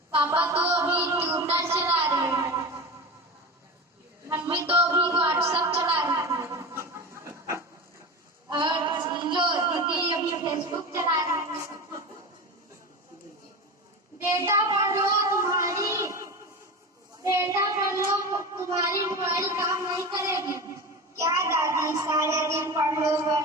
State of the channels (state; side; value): normal; both; correlation 0.27